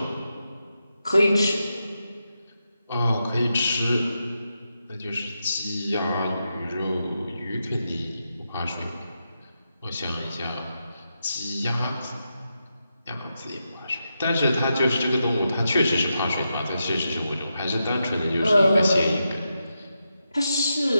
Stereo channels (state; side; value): inverted; both; correlation -0.87